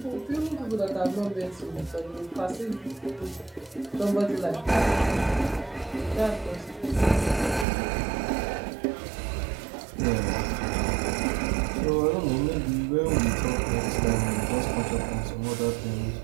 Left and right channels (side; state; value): left; drops out; at 7.7 s